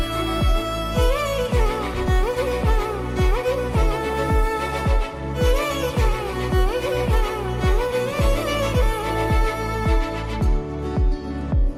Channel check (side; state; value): both; identical; correlation 1.00